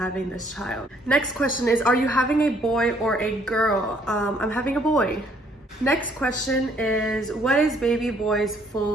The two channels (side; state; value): both; normal; correlation 0.65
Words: this child. Next question is, are you having a boy or a girl? I'm having a boy. Next question is, what is baby boy's